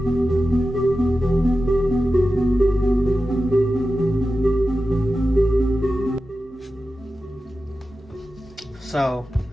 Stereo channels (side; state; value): both; normal; correlation 0.93